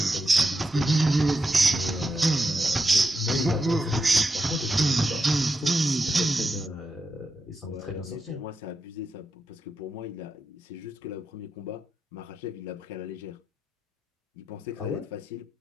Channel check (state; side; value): normal; both; correlation 0.86